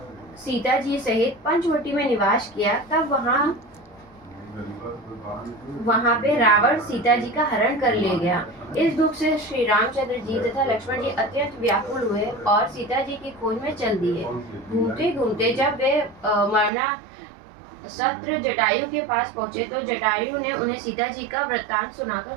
सीता जी सहित पंचवटी में निवास किया, तब वहां पे रावण सीता जी का हरण कर ले गया। इस दुख से श्री रामचंद्र जी तथा लक्ष्मण जी अत्यंत व्याकुल हुए और सीता जी की खोज में चल दिए। घूमते घूमते जब वे मरना सत्र जटायु के पास पहुंचे तो जटायु ने उन्हें सीता जी का वृत्तांत सुनाकर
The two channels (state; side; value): drops out; left; at 16.7 s